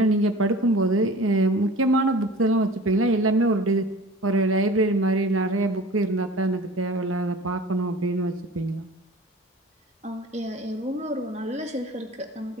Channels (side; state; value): both; normal; correlation 0.41